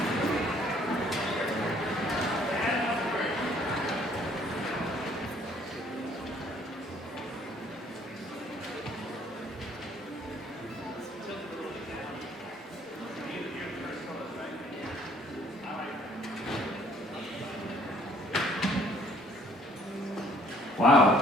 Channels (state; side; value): normal; both; correlation 0.60